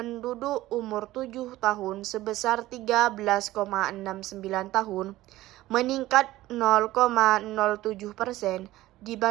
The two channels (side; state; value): left; quieter; 16.4 dB